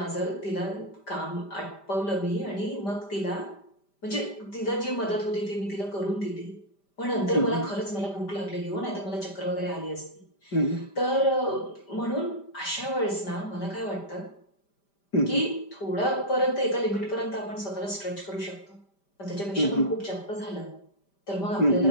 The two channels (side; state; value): right; late; 5.1 ms